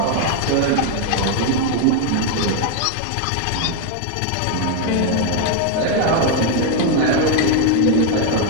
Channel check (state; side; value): different; both; correlation 0.01